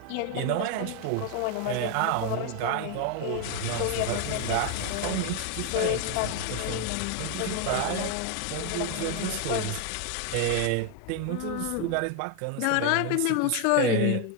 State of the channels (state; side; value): different; both; correlation 0.01